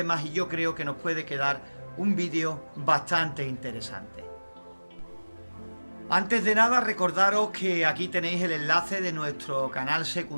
y yo creo que nos puede quedar un vídeo bastante interesante. Antes de nada, recordaros que aquí tenéis el enlace de nuestro canal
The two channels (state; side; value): inverted; both; correlation -1.00